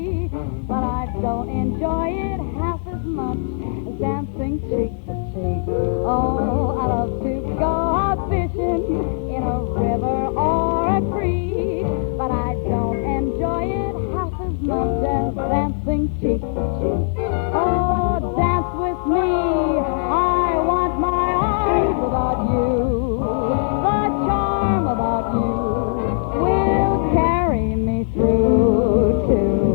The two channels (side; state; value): right; silent; digital silence